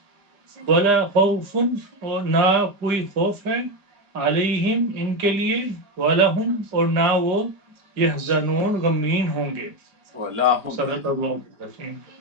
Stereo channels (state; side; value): late; left; 5.0 ms